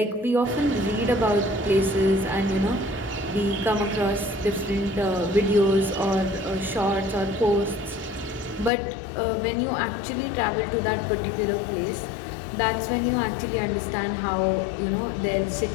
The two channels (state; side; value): drops out; right; at 8.7 s